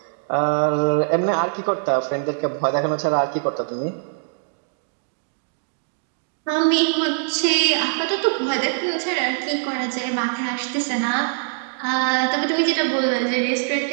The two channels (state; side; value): silent; left; digital silence